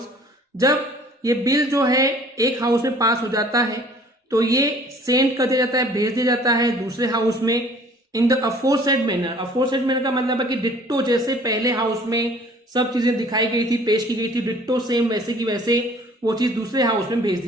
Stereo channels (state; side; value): normal; both; correlation 0.52